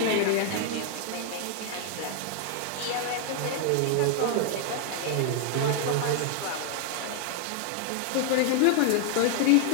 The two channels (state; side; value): different; both; correlation 0.00